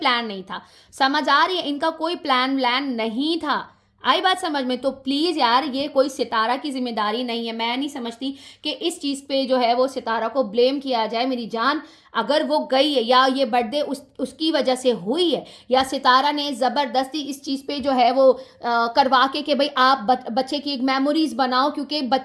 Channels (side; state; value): both; identical; correlation 1.00